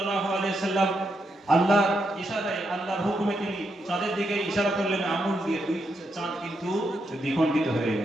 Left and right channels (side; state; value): both; normal; correlation 0.82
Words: আলাইহি ওয়াসাল্লাম আল্লাহর ইশারায়, আল্লাহর হুকুমে তিনি চাঁদের দিকে ইশারা করলেন আঙুল দিয়ে, দুই চাঁদ কিন্তু দ্বিখণ্ডিত হয়ে